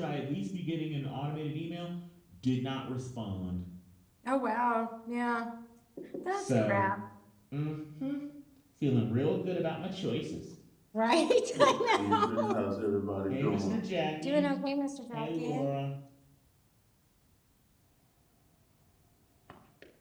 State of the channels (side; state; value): both; identical; correlation 1.00